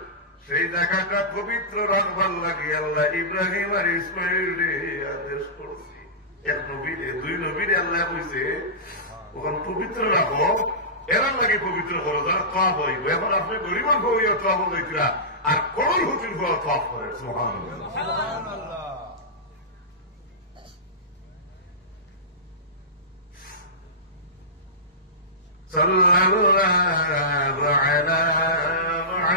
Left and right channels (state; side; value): normal; both; correlation -0.19